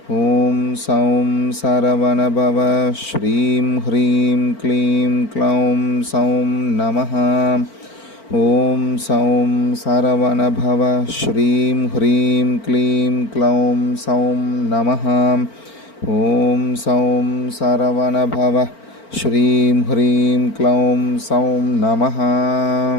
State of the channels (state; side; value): late; right; 4.4 ms